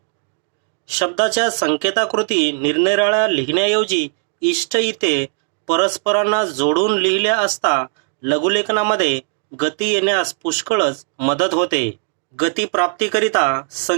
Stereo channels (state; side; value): silent; left; digital silence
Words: शब्दाच्या संकेताकृती निरनिराळ्या लिहिण्याऐवजी इष्ट इथे परस्परांना जोडून लिहिल्या असता लघुलेखनामध्ये गती येण्यास पुष्कळच मदत होते. गती प्राप्तीकरिता